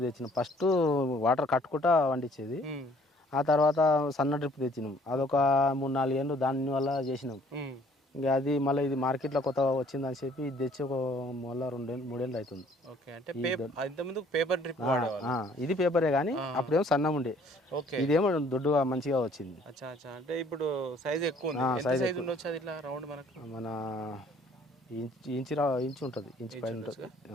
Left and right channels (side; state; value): both; normal; correlation 0.59